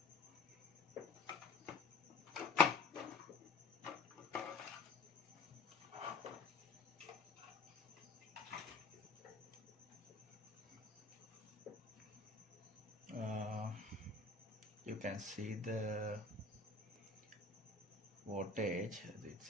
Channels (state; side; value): quieter; right; 3.9 dB